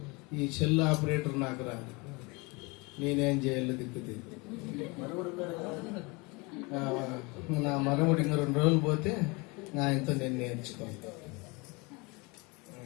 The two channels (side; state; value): right; quieter; 27.2 dB